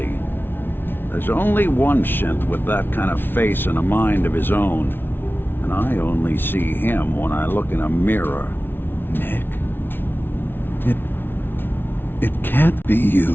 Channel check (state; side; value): late; right; 0.10 ms